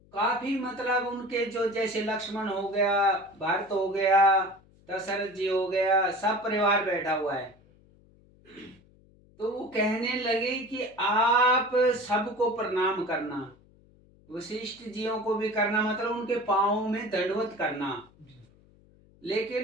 काफी मतलब उनके जो जैसे लक्ष्मण हो गया, भरत हो गया, दशरथ जी हो गया, सब परिवार बैठा हुआ है। तो वो कहने लगे कि आप सबको प्रणाम करना, वशिष्ठ जियों को भी करना, मतलब उनके पांवों में दंडवत करना।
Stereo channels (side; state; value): left; noise; hum, 29 dB below the sound